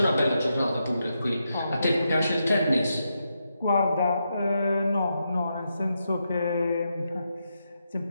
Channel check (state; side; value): inverted; both; correlation -0.84